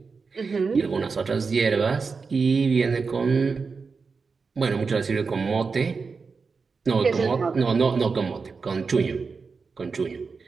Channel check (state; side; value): quieter; left; 4.9 dB